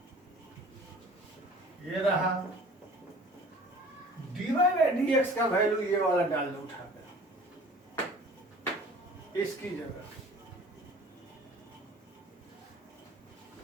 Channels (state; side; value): normal; both; correlation 0.47